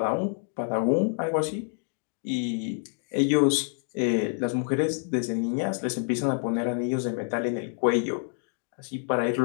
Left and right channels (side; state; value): right; silent; 57 dB below the other